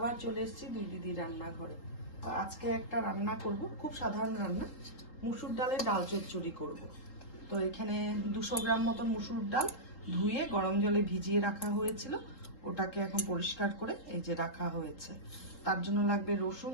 চলে এসেছি দুই দিদি রান্নাঘরে। তো আজকে একটা রান্না করব, খুব সাধারণ রান্না। মুসুর ডালের ডাল চচ্চড়ি করব। তো এখানে 200 গ্রাম মতন মুসুর ডাল ধুয়ে গরম জলে ভিজিয়ে রাখা হয়েছিল, ওটাকে এখন পরিষ্কার করে এই যে রাখা হয়েছে। তার জন্য লাগবে রসুন,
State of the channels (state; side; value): late; right; 3.8 ms